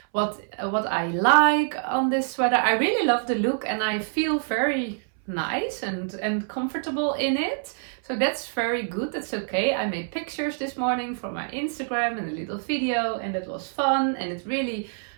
I like on this sweater. I really love the look, and I feel very nice and comfortable in it, so that's very good. That's okay. I made pictures this morning for my Instagram and a little video, and it was fun, and it really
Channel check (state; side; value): silent; left; 58 dB below the other